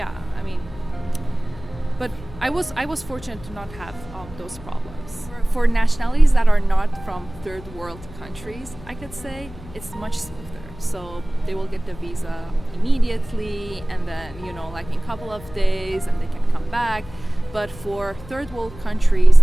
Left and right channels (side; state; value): left; noise; hum, 17 dB below the sound